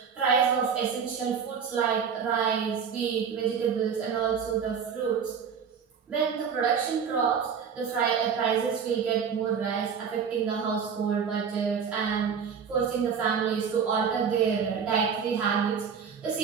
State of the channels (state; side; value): quieter; left; 6.8 dB